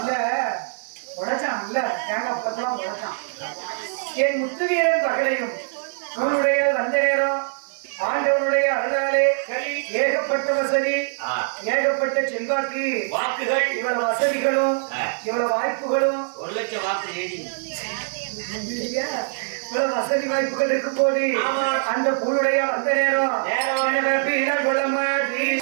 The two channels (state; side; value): silent; left; digital silence